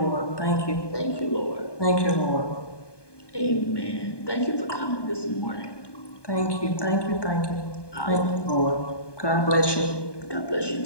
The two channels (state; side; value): late; right; 1.2 ms